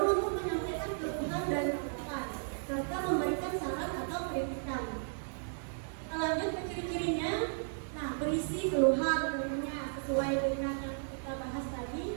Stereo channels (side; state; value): left; silent; 55 dB below the other